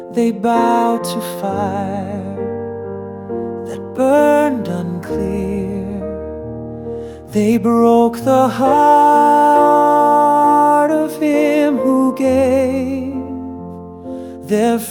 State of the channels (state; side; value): identical; both; correlation 1.00